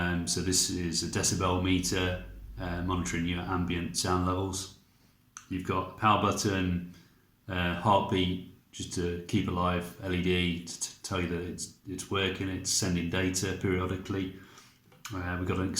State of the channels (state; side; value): identical; both; correlation 1.00